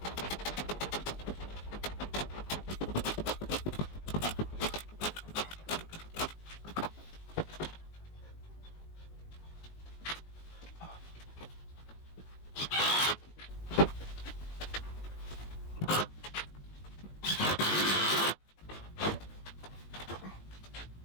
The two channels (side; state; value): right; late; 19 ms